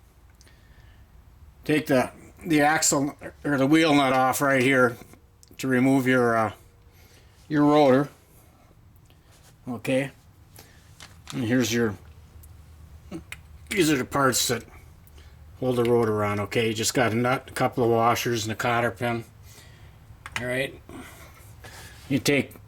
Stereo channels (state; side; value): identical; both; correlation 1.00